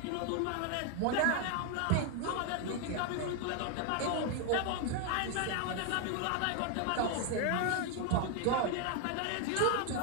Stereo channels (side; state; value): both; different; correlation 0.01